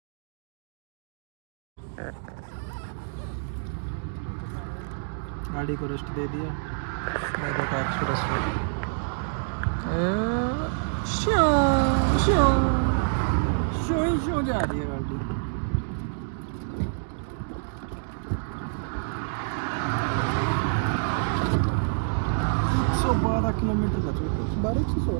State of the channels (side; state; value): left; silent; digital silence